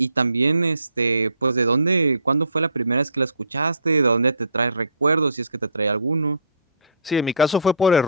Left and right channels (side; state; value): both; inverted; correlation -0.52